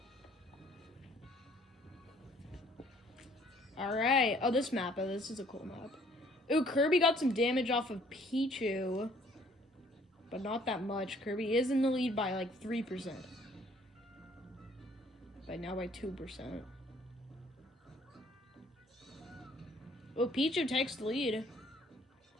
Alright. Oh, this map. Oh, this is a cool map. Ooh, Kirby got some damage off of Pichu. But not that much. Kirby is in the lead by like 3%. Now by 2%. Oh, Pichu takes the lead.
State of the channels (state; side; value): normal; both; correlation 0.60